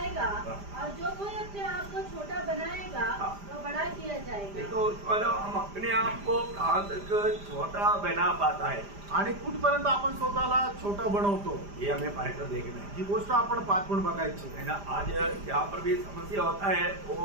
और जो कोई अपने आप को छोटा बनाएगा वह बड़ा किया जाएगा. देखो, हम अपने आप को कहाँ तक छोटा बना पाता है, आणि कुठपर्यंत आपण स्वतःला छोटं बनवतो, ये हमें पाठकर देखना है. ही गोष्ट आपण पाठवून बघायची है ना. आज जहाँ पर भी समस्या होता है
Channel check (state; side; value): late; left; 5.0 ms